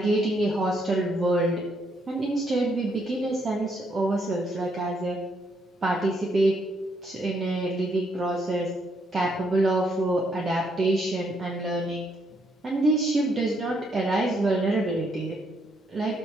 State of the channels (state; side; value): normal; both; correlation 0.74